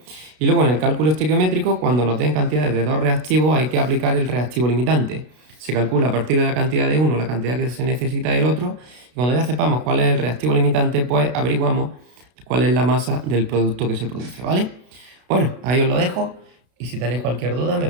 Y luego en el cálculo estequiométrico, cuando nos den cantidades de dos reactivos, hay que aplicar el reactivo limitante. Se calcula a partir de la cantidad de uno, la cantidad que se necesita del otro. Y cuando ya sepamos cuál es el reactivo limitante, pues averiguamos cuál es la masa del producto que se produce, ¿vale? Bueno, ahí os lo dejo. Y si tenéis cualquier duda, me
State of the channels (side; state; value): left; late; 32 ms